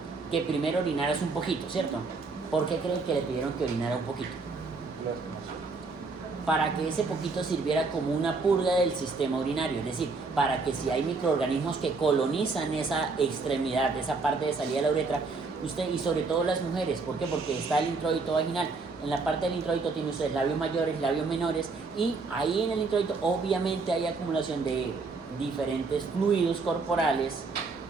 Que primero orinaras un poquito, ¿cierto? ¿Por qué creen que le pidieron que orinara un poquito? Para que ese poquito sirviera como una purga del sistema urinario, es decir, para que si hay microorganismos que colonizan esa extremidad, esa parte de salida de la uretra, usted, y sobre todo las mujeres, ¿por qué? Porque está el introito vaginal. En la parte del introito tiene ustedes labios mayores, labios menores, y ahí en el introito obviamente hay acumulación de diferentes fluidos corporales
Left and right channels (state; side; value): quieter; left; 4.1 dB